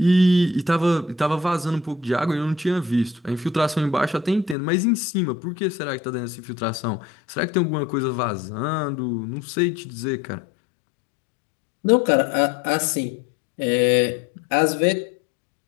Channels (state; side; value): drops out; right; at 4.5 s